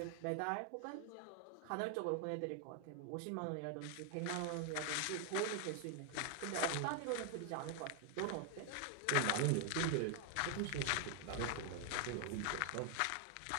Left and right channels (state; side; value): different; both; correlation 0.00